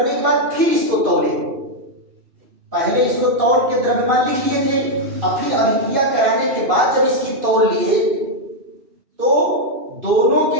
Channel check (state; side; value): late; left; 2.7 ms